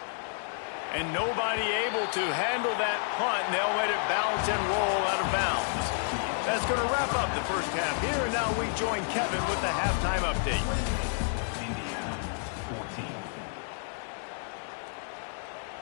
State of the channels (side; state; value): right; silent; digital silence